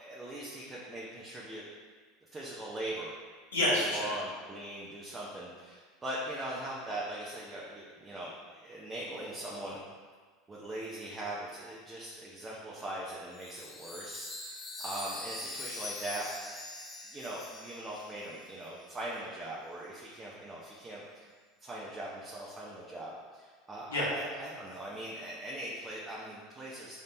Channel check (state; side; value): normal; both; correlation 0.35